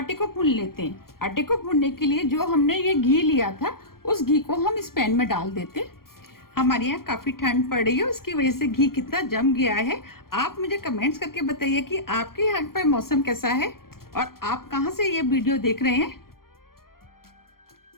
को भून लेते हैं। आटे को भूनने के लिए जो हमने ये घी लिया था उस घी को हम इस पैन में डाल देते हैं। हमारे यहाँ काफी ठंड पड़ रही है, उसकी वजह से घी कितना जम गया है। आप मुझे कमेंट्स करके बताइए कि आपके यहाँ पर मौसम कैसा है और आप कहाँ से ये वीडियो देख रहे हैं।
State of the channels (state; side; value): late; right; 0.92 ms